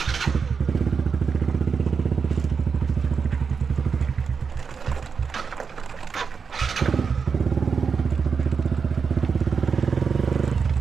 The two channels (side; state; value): left; quieter; 5.7 dB